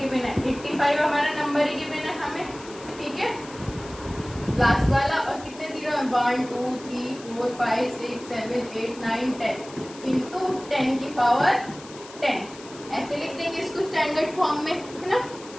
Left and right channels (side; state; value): left; noise; hiss, 18 dB below the sound